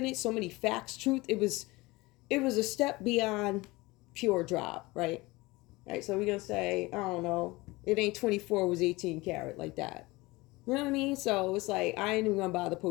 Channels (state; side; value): quieter; right; 22.0 dB